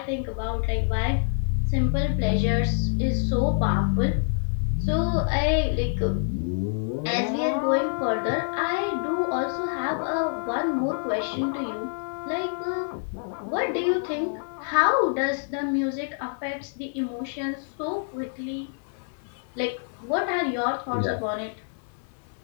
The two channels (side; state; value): right; silent; digital silence